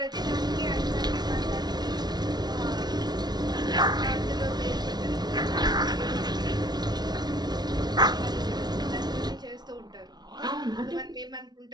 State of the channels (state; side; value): late; left; 0.19 ms